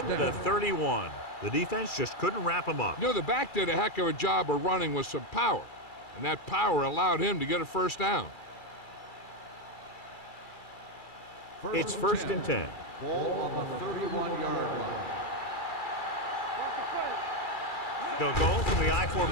the 31. The defense just couldn't wrap him up. You know, the back did a heck of a job of running with some power, and that power allowed him to get a first down. It's first and 10. Ball on the 31-yard line. They'll go from the I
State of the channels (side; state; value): right; late; 2.3 ms